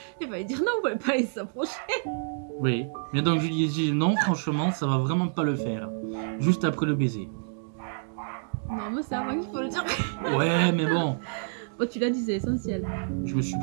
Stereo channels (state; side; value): silent; left; digital silence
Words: Il fallait dire non, on pouvait pas aller s'approcher. Oui, mais donc je lui ai dit non, franchement, ça va vraiment pas le faire. Juste après le baiser. Non, mais c'est avant qu'il faut le dire. Ouais, mais bon, Bon, tu l'as dit, c'est essentiel. je me suis